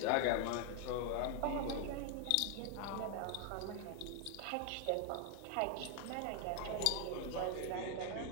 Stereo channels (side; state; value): both; different; correlation 0.00